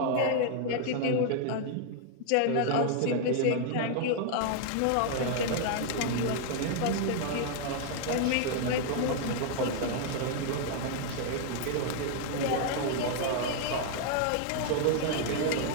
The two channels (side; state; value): both; different; correlation 0.00